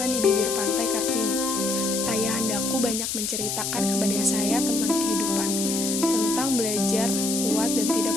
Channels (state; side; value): noise; left; hiss, 2 dB below the sound